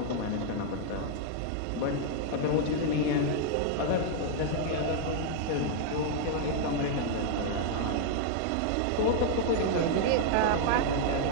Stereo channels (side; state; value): both; different; correlation 0.00